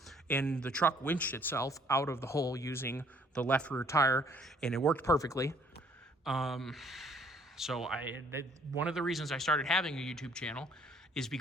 and the truck winched itself out of the hole using the left rear tire, and it worked perfectly. So one of the reasons I started having a YouTube channel is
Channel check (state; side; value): normal; both; correlation 0.61